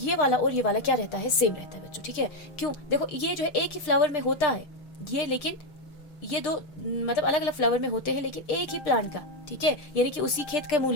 वाला क्या रहता है, सेम रहता है बच्चों, ठीक है। क्यों, देखो ये जो है एक ही फ्लावर में होता है ये, लेकिन ये दो मतलब अलग अलग फ्लावर में होते हैं लेकिन एक ही प्लांट का, ठीक है, यानी कि उसी खेत का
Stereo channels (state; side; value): late; right; 6.6 ms